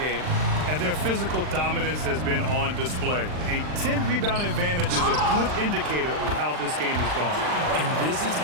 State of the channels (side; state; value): left; late; 39 ms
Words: game. And their physical dominance has been on display. A 10-rebound advantage is a good indicator of how this game has gone. And this is